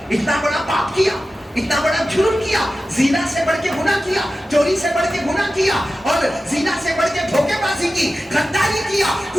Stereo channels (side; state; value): both; normal; correlation 0.94